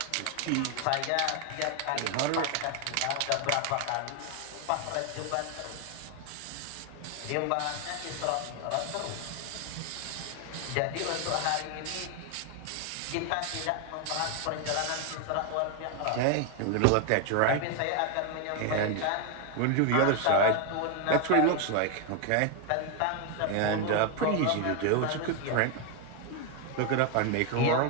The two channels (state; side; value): different; both; correlation 0.01